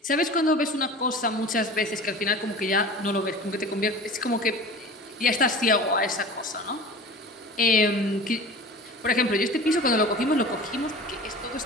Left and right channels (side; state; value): both; normal; correlation 0.37